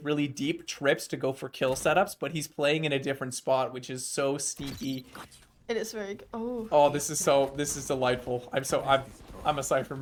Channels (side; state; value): both; identical; correlation 1.00